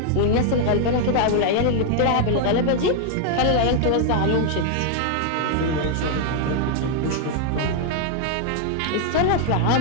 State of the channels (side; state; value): both; different; correlation 0.00